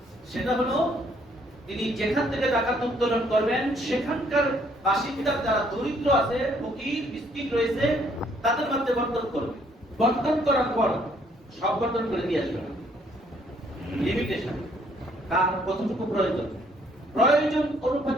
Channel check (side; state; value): both; normal; correlation 0.66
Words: সেটা হলো, তিনি যেখান থেকে যাকাত উত্তোলন করবেন সেখানকার বাসিন্দার যারা দরিদ্র আছে, ফকির মিসকিন রয়েছে, তাদের মধ্যে বন্টন করবে। বন্টন করার পর সব বন্টন করে দিয়ে আসবে। লিমিটেশন, কার কতটুকু প্রয়োজন, প্রয়োজন